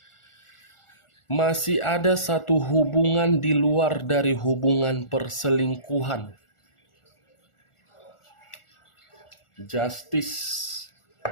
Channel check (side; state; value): right; late; 1.4 ms